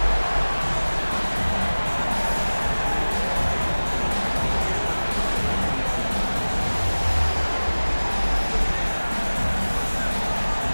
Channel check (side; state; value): both; inverted; correlation -1.00